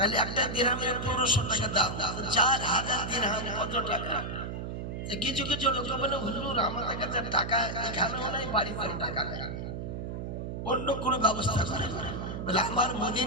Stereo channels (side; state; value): right; noise; hum, 6 dB below the sound